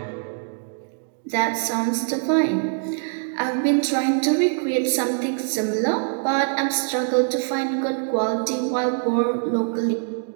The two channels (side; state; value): left; silent; digital silence